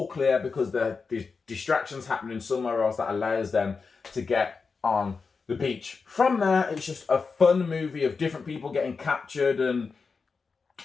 clear because the distractions happening somewhere else that allows them to get on the beach. From there, it's just a fun movie of different people getting captured and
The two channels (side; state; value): right; quieter; 4.8 dB